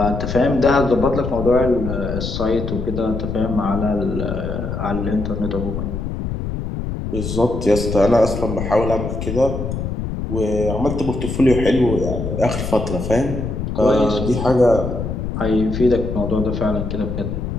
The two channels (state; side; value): noise; left; rumble, 4 dB below the sound